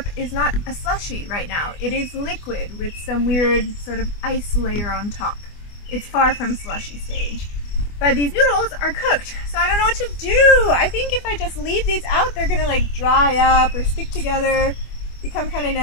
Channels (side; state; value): right; late; 24 ms